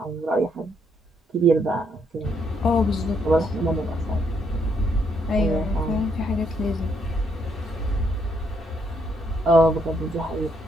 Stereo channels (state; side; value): normal; both; correlation 0.73